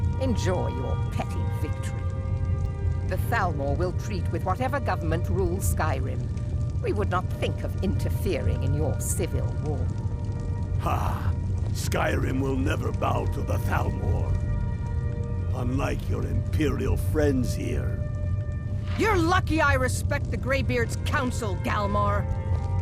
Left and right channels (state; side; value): identical; both; correlation 1.00